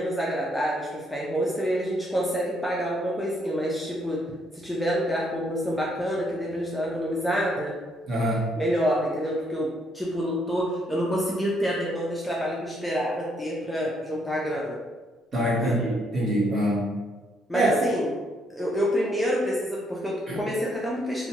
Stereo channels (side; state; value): both; normal; correlation 0.72